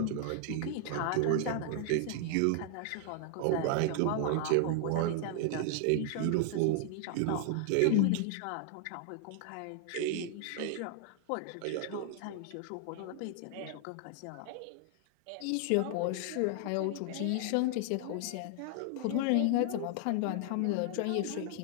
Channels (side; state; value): both; different; correlation 0.00